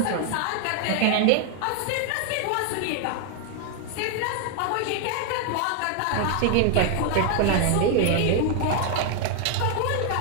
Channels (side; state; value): both; different; correlation 0.00